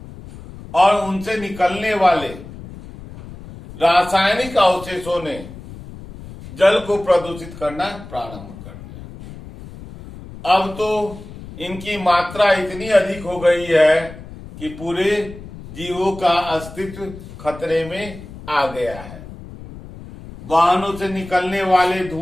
और उनसे निकलने वाले रासायनिक अवशेषों ने जल को प्रदूषित करना प्रारंभ कर दिया। अब तो इनकी मात्रा इतनी अधिक हो गई है कि पूरे जीवों का अस्तित्व खतरे में आ गया है। वाहनों से निकलने वाले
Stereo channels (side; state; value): left; noise; rumble, 15 dB below the sound